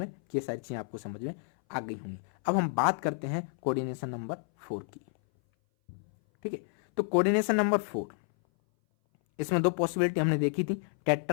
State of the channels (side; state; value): right; silent; 58 dB below the other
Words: कि ये सारी चीजें आपको समझ में आ गई होंगी। अब हम बात करते हैं कोऑर्डिनेशन नंबर 4 की, ठीक है। तो कोऑर्डिनेशन नंबर 4, इसमें 2 पॉसिबिलिटी हमने देखी थी,